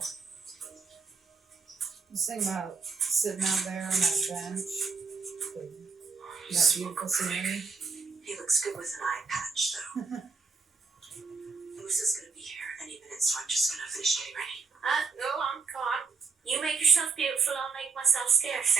Just think about sitting out there on that bench. That beautiful scenery. He looks good with an eye patch, though. Moose gonna be here any minute, so I'm just gonna finish getting ready. Go on, come on. You make yourself beautiful, I'll make myself scarce.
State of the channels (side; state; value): left; quieter; 4.8 dB